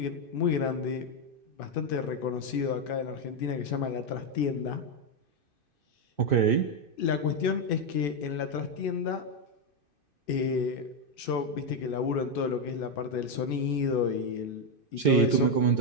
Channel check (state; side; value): late; right; 2.6 ms